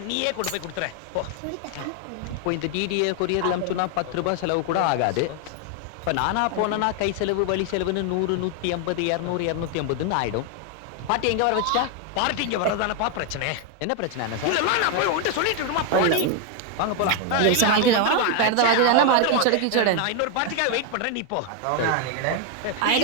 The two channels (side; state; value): both; different; correlation 0.01